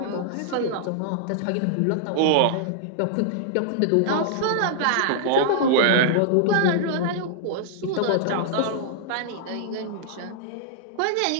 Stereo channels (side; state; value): both; different; correlation -0.01